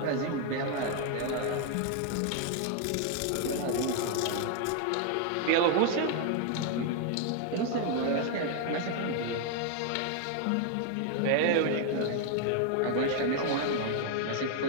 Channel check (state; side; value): different; both; correlation 0.00